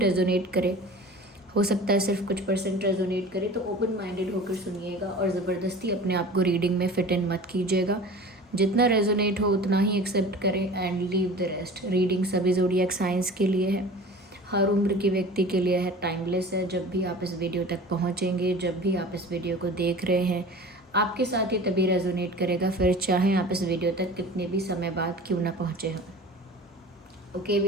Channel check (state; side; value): normal; both; correlation 0.39